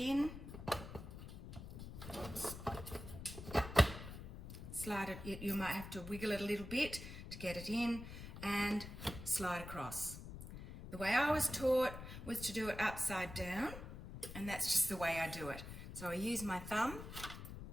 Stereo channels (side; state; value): left; noise; rumble, 10 dB below the sound